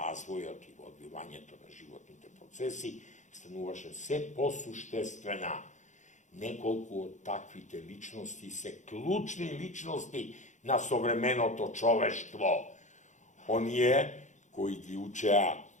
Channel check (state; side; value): late; right; 0.35 ms